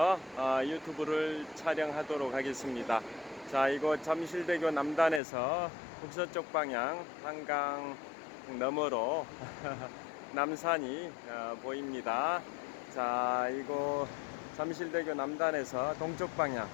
유튜브를 촬영하도록 하겠습니다. 자, 이곳 잠실대교 남단에서 북서쪽 방향 한강 너머로 남산이 보입니다. 자, 이곳 잠실대교 남단에서 동쪽 방향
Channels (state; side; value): drops out; right; at 5.2 s